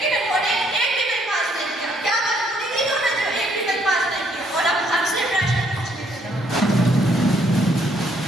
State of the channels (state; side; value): normal; both; correlation 0.68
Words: उन्होंने एक भी बिल पास नहीं किया। क्या मजबूरी थी उन्होंने जो एक भी बिल पास नहीं किया? और अब हमसे प्रश्न पूछने के लिए